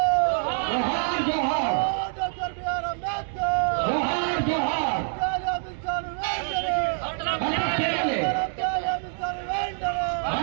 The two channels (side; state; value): left; silent; 61 dB below the other